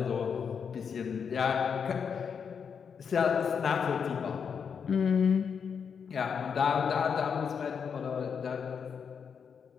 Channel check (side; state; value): right; quieter; 6.7 dB